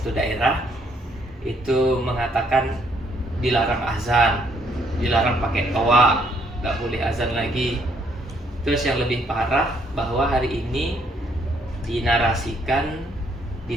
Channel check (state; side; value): normal; both; correlation 0.69